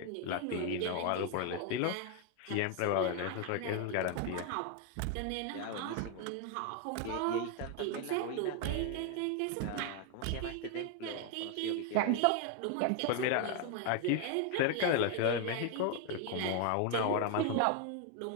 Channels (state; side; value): different; both; correlation 0.01